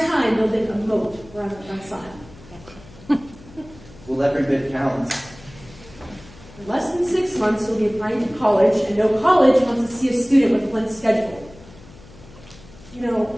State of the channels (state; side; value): noise; left; hum, 21 dB below the sound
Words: time building a moat around the front side. Well, every bit counts. In less than 6 months, you'll be applying to college, and no college wants to see a student with a blank schedule. You